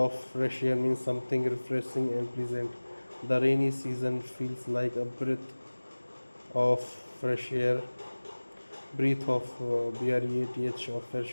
fresh air means something refreshing and pleasant. The rainy season feels like a breath of fresh air. Breath of breath of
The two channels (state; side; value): inverted; both; correlation -1.00